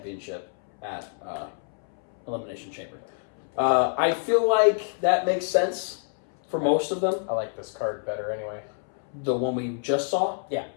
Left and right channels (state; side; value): silent; right; 60 dB below the other